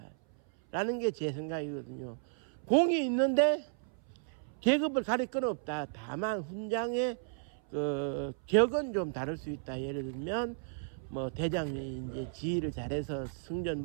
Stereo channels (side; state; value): left; silent; 55 dB below the other